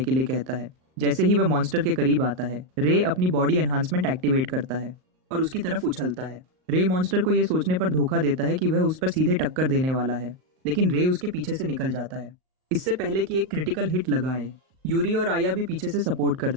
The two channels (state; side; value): late; left; 38 ms